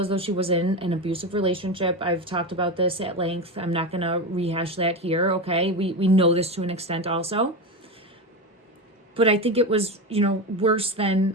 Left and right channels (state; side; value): normal; both; correlation 0.18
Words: though she was in an abusive relationship. I've talked about this at length. I'm not going to rehash that here, okay? We know this to an extent also. But I think it was, worse